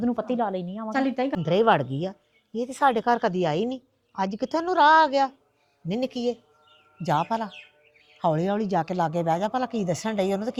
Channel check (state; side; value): identical; both; correlation 1.00